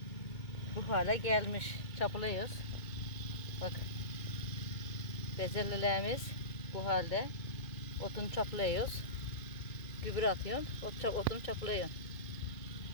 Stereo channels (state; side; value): late; right; 2.2 ms